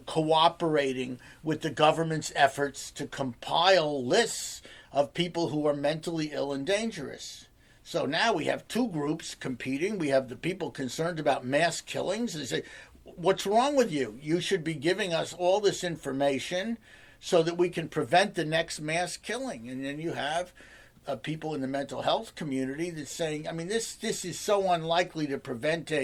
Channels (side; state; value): both; identical; correlation 1.00